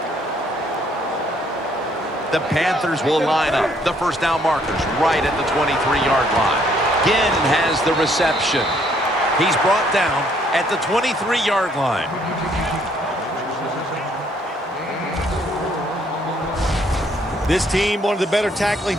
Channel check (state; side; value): normal; both; correlation 0.66